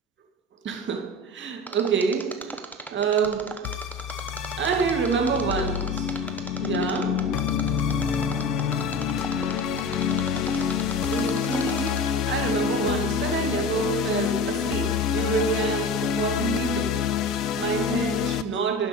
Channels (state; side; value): normal; both; correlation 0.31